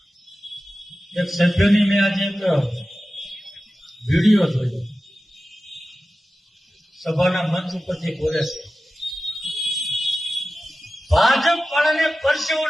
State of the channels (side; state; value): both; normal; correlation 0.94